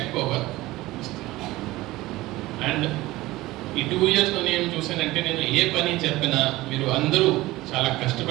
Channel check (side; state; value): left; quieter; 18.4 dB